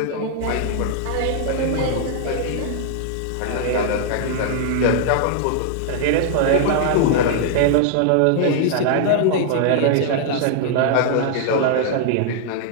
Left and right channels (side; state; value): both; different; correlation -0.01